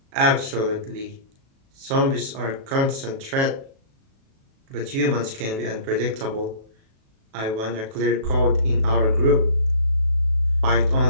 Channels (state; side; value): late; left; 37 ms